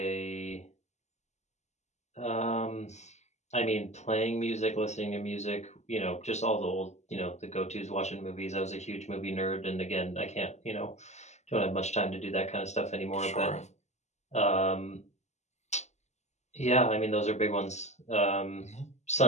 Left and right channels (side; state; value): right; late; 0.33 ms